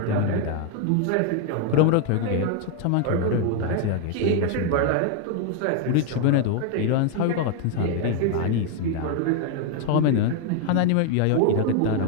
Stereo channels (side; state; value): both; different; correlation 0.01